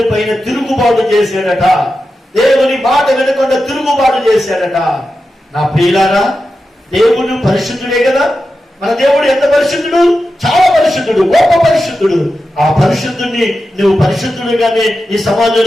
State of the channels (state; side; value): normal; both; correlation 0.91